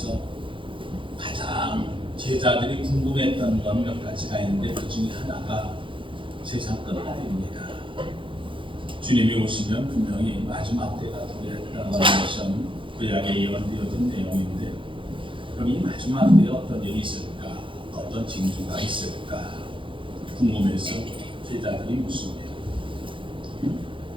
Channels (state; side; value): late; left; 0.25 ms